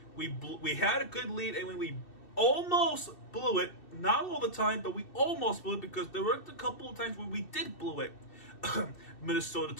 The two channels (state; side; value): late; right; 2.7 ms